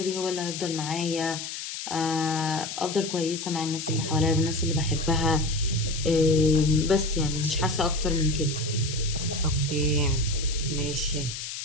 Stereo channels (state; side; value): noise; left; hiss, 7 dB below the sound